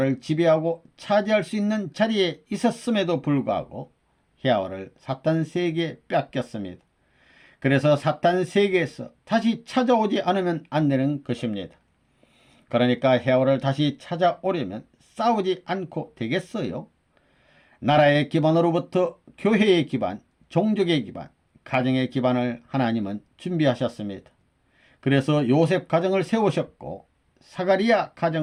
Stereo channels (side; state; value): both; identical; correlation 1.00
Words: 지배하고 차지할 수 있는 자리에 있었음에도 불구하고 헤와를 사탄 세계에 뺏겼습니다. 그래서 사탄 세계에서 다시 찾아오지 않으면 안 되는 것입니다. 그러니까 헤와를 다시 찾아오려면 싸우지 않고 되겠어요? 나라의 기반으로부터 교회의 기반, 종족의 기반, 가정의 기반을 하나님은 준비하셨습니다. 그래서 요셉 가정을 세우셨고 사가리야